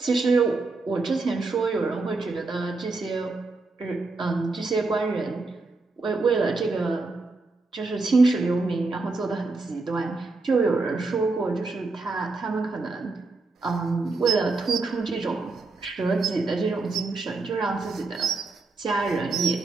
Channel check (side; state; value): left; quieter; 3.6 dB